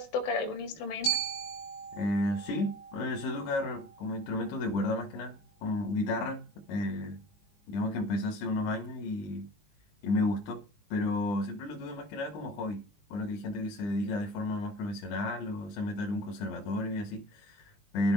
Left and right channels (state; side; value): late; right; 19 ms